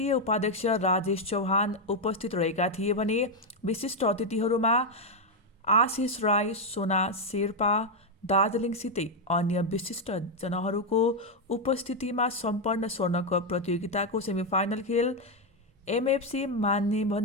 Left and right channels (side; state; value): both; normal; correlation 0.03